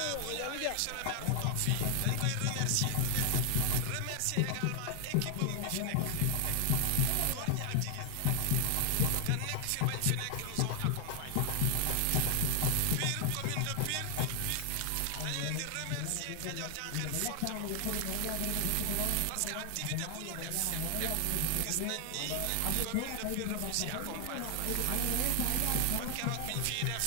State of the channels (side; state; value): both; different; correlation 0.00